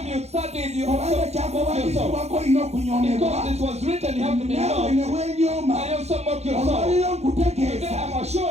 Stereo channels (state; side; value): late; left; 0.31 ms